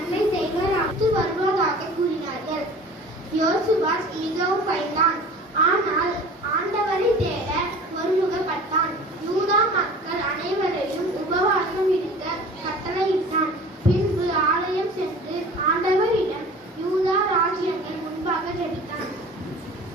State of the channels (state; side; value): normal; both; correlation 0.43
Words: செய்வர் வருவதாக கூறினார்கள். யோசபாத் மிகவும் பயந்தான். ஆனால் ஆண்டவரை தேட ஒருமுகப்பட்டான். யூதா மக்கள் அனைவரையும் உபவாசம் இருக்க கட்டளையிட்டான். பின்பு ஆலயம் சென்று ஆண்டவரிடம் யூதா ராஜ்யங்கள் முன்பாக ஜெபித்தான்.